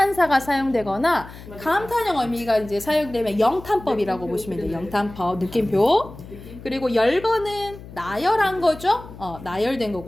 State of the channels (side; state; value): left; noise; hum, 16 dB below the sound